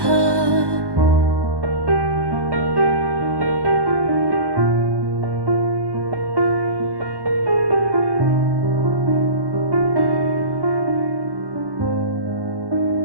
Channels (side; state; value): left; late; 1.1 ms